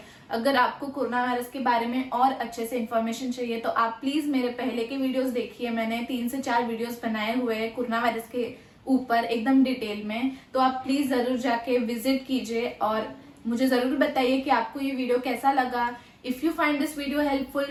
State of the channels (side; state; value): both; identical; correlation 1.00